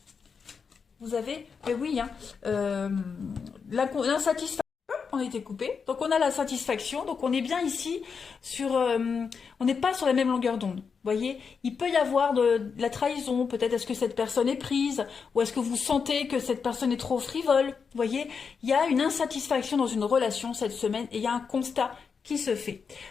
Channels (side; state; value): right; quieter; 5.8 dB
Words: Vous avez, mais oui, hein, l'insatisfaction, on a été coupé. Donc on a la satisfaction, donc on est bien ici sur, on n'est pas sur la même longueur d'onde. Vous voyez, il peut y avoir de la trahison, peut-être est-ce que cette personne est prise, ou est-ce que vous sentez que cette personne est trop frivole. Vous voyez, il y a une insatisfaction dans une relation cette semaine et il y a un constat qui se fait.